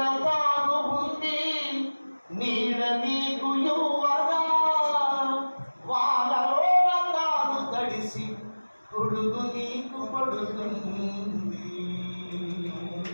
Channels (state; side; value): inverted; both; correlation -1.00